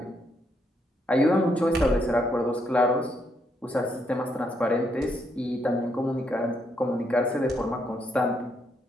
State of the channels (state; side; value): normal; both; correlation 0.76